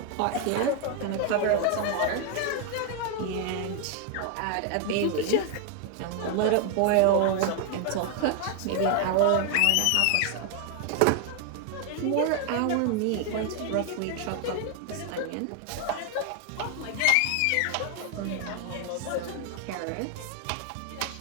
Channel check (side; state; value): both; different; correlation 0.00